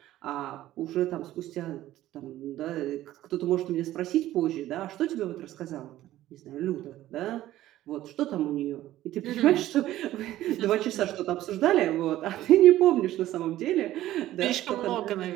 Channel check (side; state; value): left; quieter; 14.4 dB